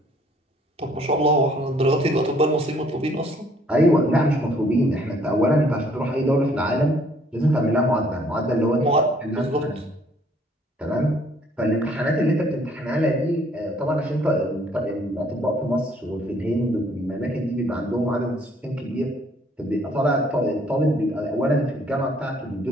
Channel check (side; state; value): both; normal; correlation 0.62